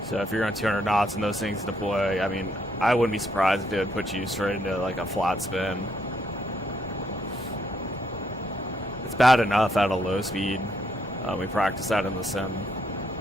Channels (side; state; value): both; normal; correlation 0.74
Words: So if you're on 200 knots and those things deploy, I mean, I wouldn't be surprised if it would put you straight into like a flat spin. It's bad enough at a low speed. We practice that in the sim